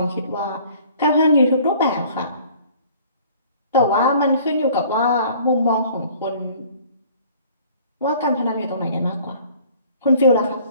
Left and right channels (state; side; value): inverted; both; correlation -0.53